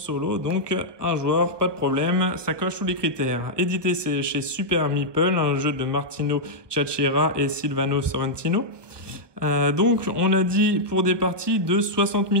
donc un joueur, pas de problème, ça coche tous les critères. Édité c'est chez Super Meeple, un jeu de Martino Ciacciera et Silvano Sorrentino. Donc on a dit pour des parties de 60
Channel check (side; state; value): left; late; 1.3 ms